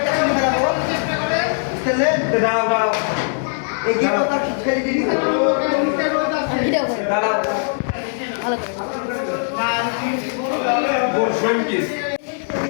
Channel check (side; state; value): right; silent; 66 dB below the other